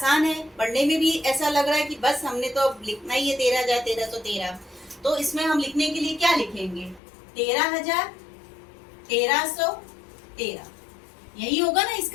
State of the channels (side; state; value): right; drops out; at 7.0 s